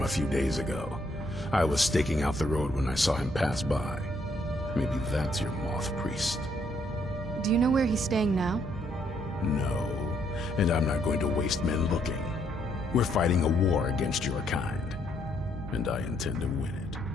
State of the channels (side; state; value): both; normal; correlation 0.71